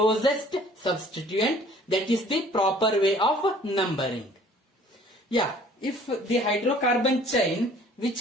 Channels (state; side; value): normal; both; correlation 0.54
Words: substituent, that is the proper way of numbering. Yeah, if the hydrocarbon chain